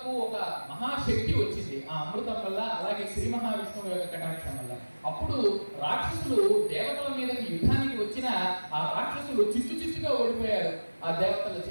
ఒక మహాశక్తి వచ్చింది ఆ అమృతం వల్ల, అలాగే శ్రీ మహావిష్ణువు యొక్క కటాక్షం వల్ల. అప్పుడు రాక్షసులు దేవతల మీదకి యుద్ధానికి వచ్చిన ఆ రాక్షసులు చిత్తుగా ఓడిపోయారు ఆ దేవతల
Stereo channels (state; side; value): inverted; both; correlation -1.00